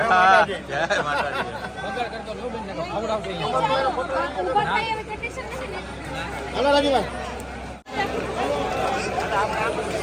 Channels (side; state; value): both; identical; correlation 1.00